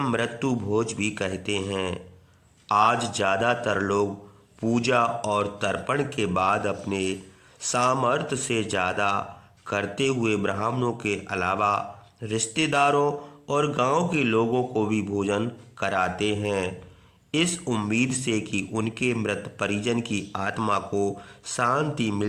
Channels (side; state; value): both; identical; correlation 1.00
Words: मृत्यु भोज भी कहते हैं। आज ज़्यादातर लोग पूजा और तर्पण के बाद अपने सामर्थ्य से ज़्यादा करते हुए ब्राह्मणों के अलावा रिश्तेदारों और गांव के लोगों को भी भोजन कराते हैं, इस उम्मीद से कि उनके मृत परिजन की आत्मा को शांति